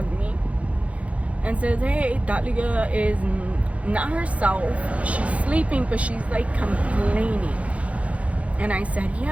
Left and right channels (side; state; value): left; late; 0.065 ms